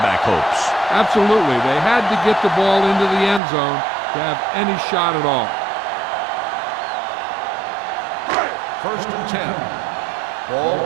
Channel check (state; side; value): drops out; left; at 3.4 s